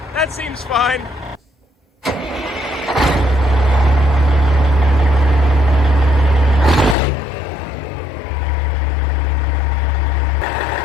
That seems fine.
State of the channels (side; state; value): right; drops out; at 7.0 s